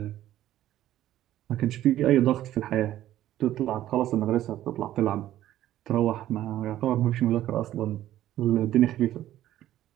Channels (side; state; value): left; quieter; 13.3 dB